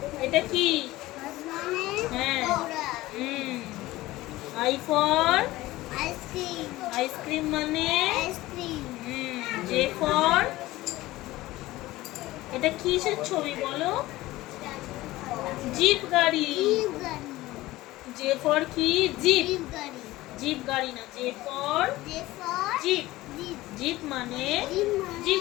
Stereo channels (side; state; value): right; quieter; 17.8 dB